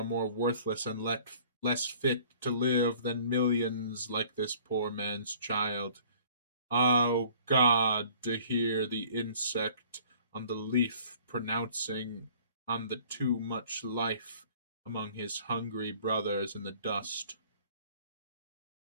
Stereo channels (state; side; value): inverted; both; correlation -0.52